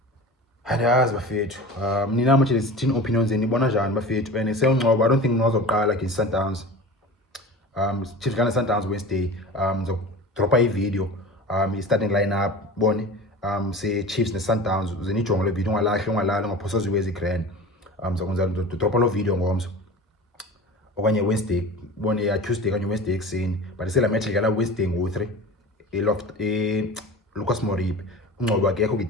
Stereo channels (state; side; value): normal; both; correlation 0.35